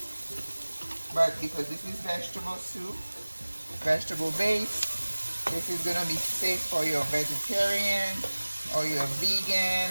but because this is vegetable soup, vegetable base, this is gonna be safe for your vegetarian or your vegan.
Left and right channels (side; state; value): both; inverted; correlation -1.00